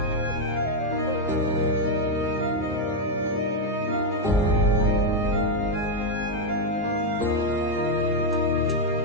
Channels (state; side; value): normal; both; correlation 0.02